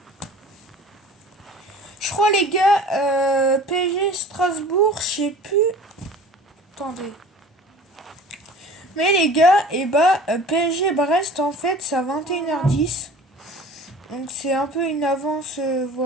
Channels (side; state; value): both; normal; correlation 0.43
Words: Je crois, les gars, PSG Strasbourg, je sais plus. Attendez. Mais les gars, et bah, PSG Brest, en fait, c'est à 21h10. Donc c'est un peu une avance,